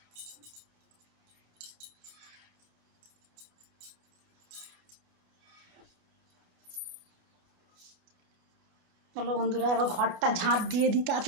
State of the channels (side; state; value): left; late; 28 ms